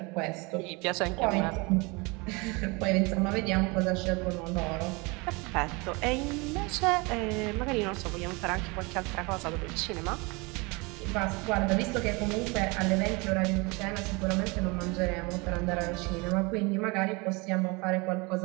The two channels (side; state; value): left; quieter; 27.4 dB